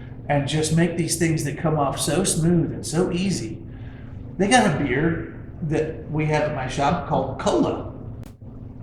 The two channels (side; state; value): both; identical; correlation 1.00